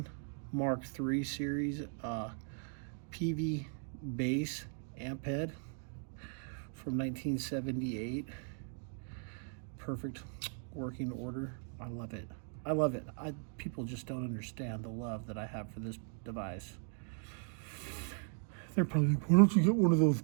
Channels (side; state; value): left; silent; 53 dB below the other